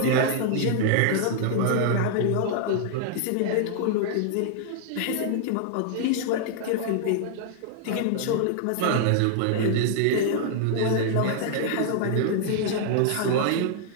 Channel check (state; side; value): different; both; correlation -0.01